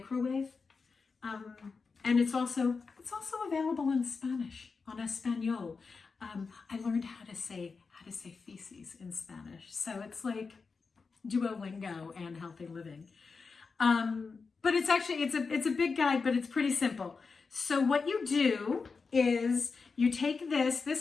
And it's also available in Spanish, en español. I learned how to say feces in Spanish, so it's like Duolingo and healthy living. But it's a big guide, but it's pretty simple. So what you do is you take this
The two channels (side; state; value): right; quieter; 4.8 dB